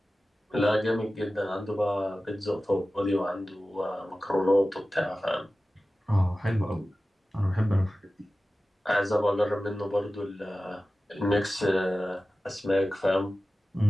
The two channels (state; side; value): normal; both; correlation 0.95